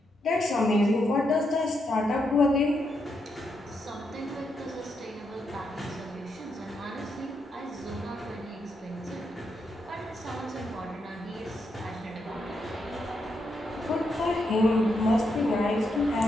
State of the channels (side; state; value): both; normal; correlation 0.81